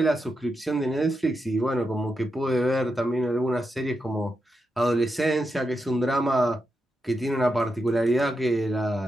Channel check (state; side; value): normal; both; correlation 0.86